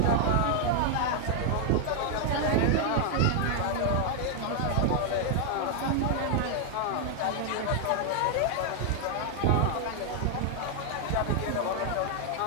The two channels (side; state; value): both; different; correlation 0.00